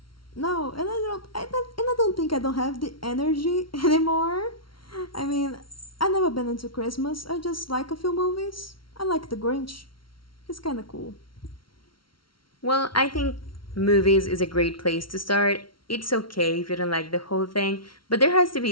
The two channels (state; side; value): late; right; 0.74 ms